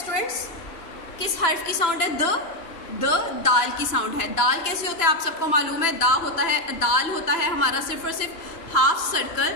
किस हर्फ की साउंड है? दाल की साउंड है. दाल कैसे होता है आप सबको मालूम है? दाल होता है हमारा सिर्फ और सिर्फ हाफ सर्कल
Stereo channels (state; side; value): late; right; 2.9 ms